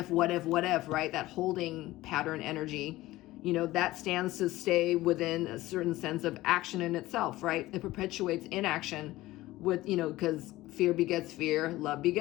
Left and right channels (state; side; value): quieter; right; 17.4 dB